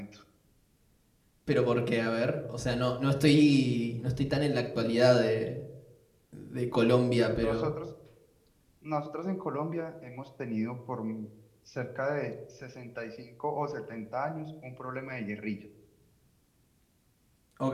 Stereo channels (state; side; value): identical; both; correlation 1.00